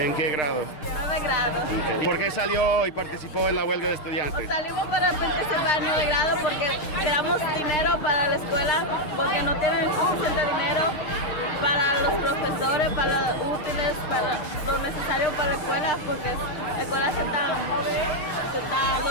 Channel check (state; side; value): late; right; 6.5 ms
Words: qué grado? de grado. Okay. ¿Por qué salió y participó en la huelga de estudiantes? Salimos para participar en 9 de grado porque queramos dinero para la escuela, porque no tienen suficiente dinero para los profesores, para los útiles, para lo necesario para la escuela, porque la escuela